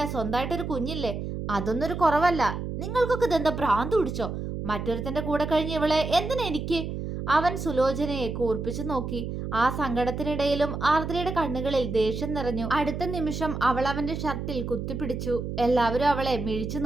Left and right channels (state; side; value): noise; right; hum, 5 dB below the sound